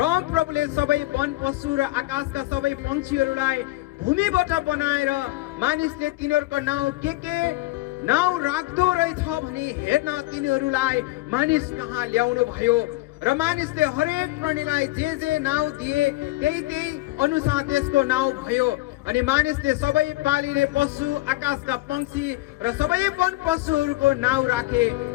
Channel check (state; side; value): quieter; right; 19.5 dB